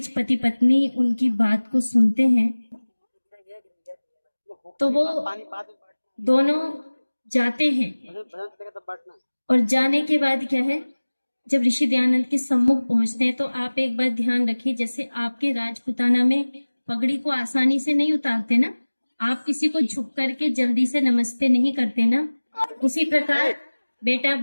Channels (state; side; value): inverted; both; correlation -1.00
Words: पति पत्नी उनकी बात को सुनते हैं तो वो दोनों जाते हैं और जाने के बाद क्या है, जब ऋषि दयानंद के सम्मुख पहुंचते हैं तो आप एक बात ध्यान रखिए, जैसे आपके राजपुताना में पगड़ी को आसानी से नहीं उतारते ना, आप किसी को झुक करके जल्दी से नमस्ते नहीं करते ना, उसी प्रकार बेटा